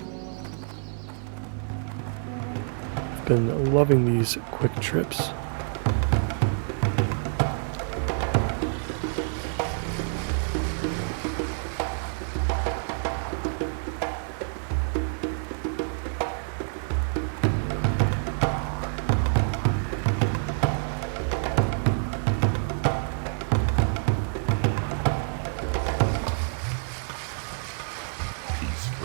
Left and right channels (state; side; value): silent; left; 56 dB below the other